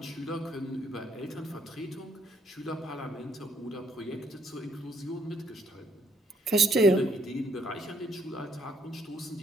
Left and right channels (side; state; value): both; normal; correlation 0.70